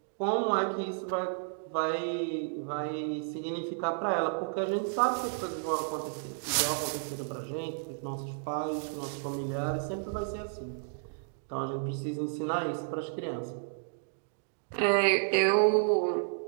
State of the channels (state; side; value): silent; left; digital silence